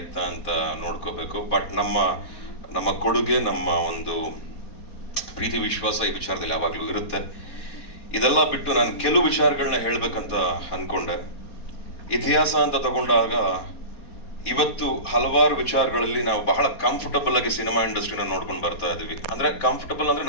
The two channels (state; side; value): late; right; 4.2 ms